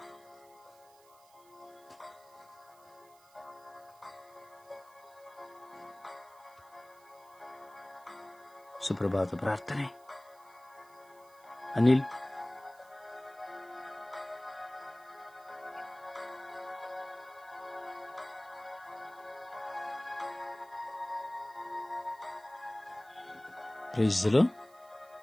ಸುಪ್ರಭಾತ ಪ್ರಾರ್ಥನೆ. ಅನಿಲ್.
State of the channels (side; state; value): right; noise; hiss, 26 dB below the sound